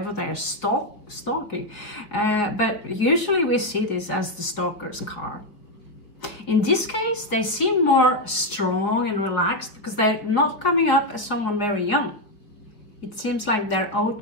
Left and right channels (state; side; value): late; right; 4.8 ms